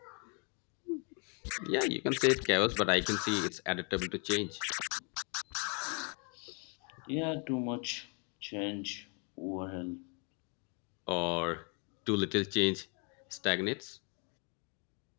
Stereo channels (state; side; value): quieter; right; 36.1 dB